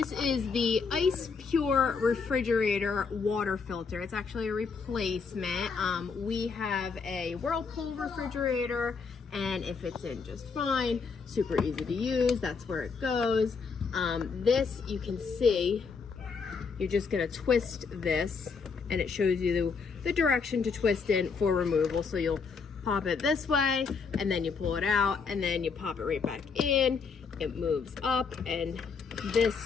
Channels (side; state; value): right; quieter; 5.3 dB